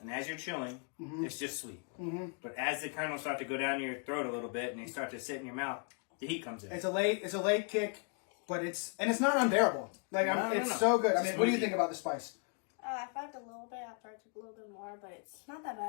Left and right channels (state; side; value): quieter; right; 37.5 dB